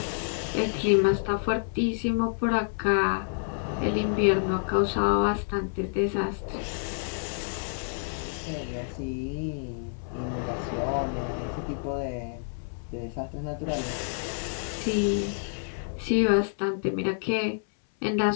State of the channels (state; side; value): silent; right; 59 dB below the other